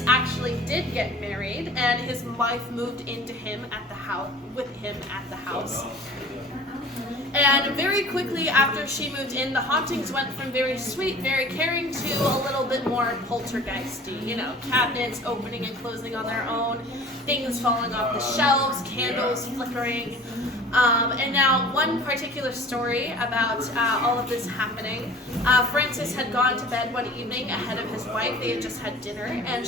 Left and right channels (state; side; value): normal; both; correlation 0.44